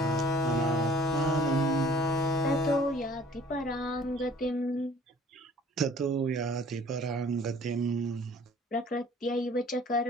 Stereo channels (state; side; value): normal; both; correlation 0.51